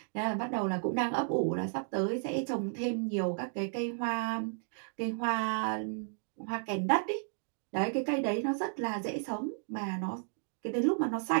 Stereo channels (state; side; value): silent; left; digital silence